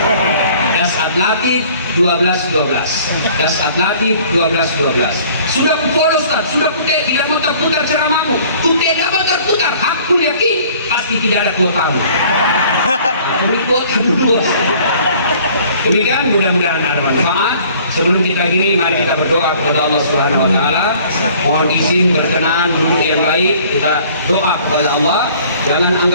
Dasat Latif 1212. Dasat Latif 1212. Sudah follow Ustaz, sudah putih, tidak mau terputar ceramahmu. Putih tidak mau terputar, aku yakin pasti tidak ada kuotamu. Beri kuota dulu. Demikian, mudah-mudahan ada manfaat. Sebelum kita gini, mari kita berdoa kepada Allah Subhanahu wa Ta'ala. Mohon izin berkenan duduk yang baik. Kita doa kepada Allah. Jangan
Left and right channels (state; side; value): inverted; both; correlation -0.53